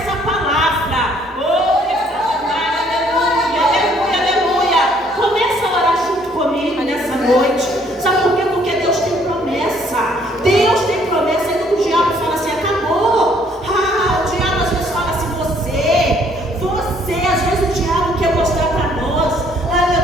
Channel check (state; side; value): normal; both; correlation 0.63